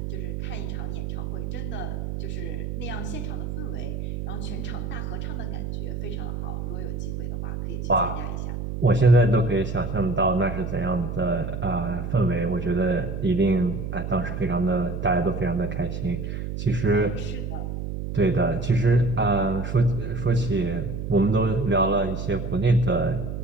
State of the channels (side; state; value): right; noise; hum, 5 dB below the sound